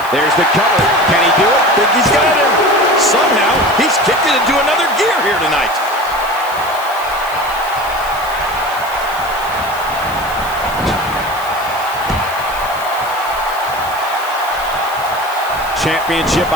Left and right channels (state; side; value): noise; left; hiss, 17 dB below the sound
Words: There's the cover. Can he do it? Think he's got him. Somehow, he's kicked it into another gear here tonight. Championship